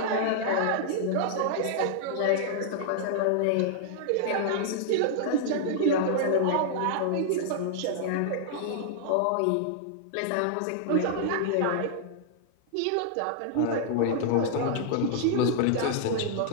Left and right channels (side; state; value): both; different; correlation -0.01